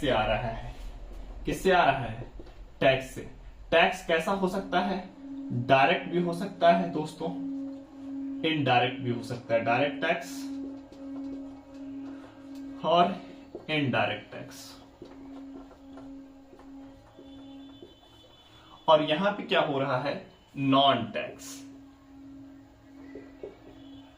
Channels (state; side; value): identical; both; correlation 1.00